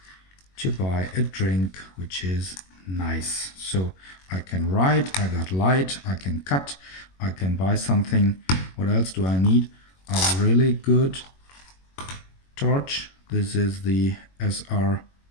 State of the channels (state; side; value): late; right; 21 ms